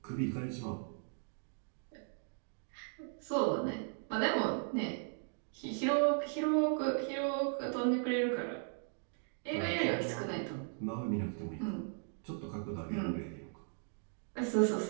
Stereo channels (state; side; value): silent; left; 53 dB below the other